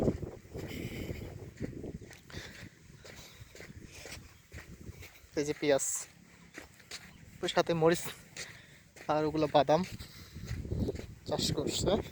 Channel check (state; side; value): identical; both; correlation 1.00